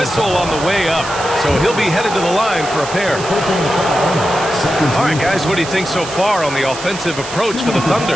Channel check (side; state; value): right; noise; hiss, 11 dB below the sound